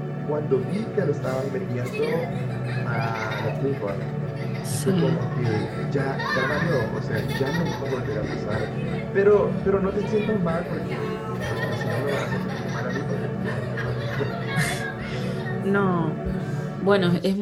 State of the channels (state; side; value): identical; both; correlation 1.00